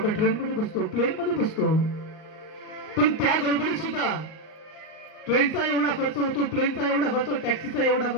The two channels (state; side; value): late; right; 38 ms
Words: ट्रेन मध्ये बसतो, प्लेन मध्ये बसतो. पण त्या गडबडीत सुद्धा ट्रेनचा एवढा खर्च होतो, प्लेनचा एवढा खर्च, टॅक्सीचा एवढा